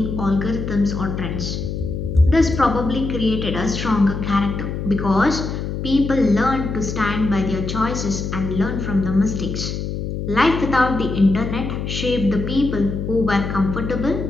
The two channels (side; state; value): left; noise; hum, 4 dB below the sound